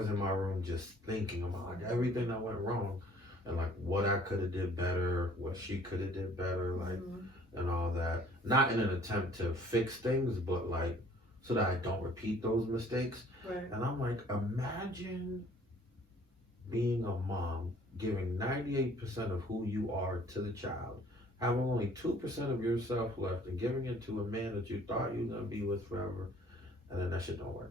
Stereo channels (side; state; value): both; normal; correlation 0.56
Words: in my room just thinking about like everything that went wrong and like what I could have did better, what she could have did better, like Mhm. and all that. Not in an attempt to fix things, but like so that I don't repeat those mistakes. Right. And I'm like, imagine being a mom, giving 98% of who you are to the child, having only 2% of yourself left, and giving it to a man that you thought you were gonna be with forever, and then that shit don't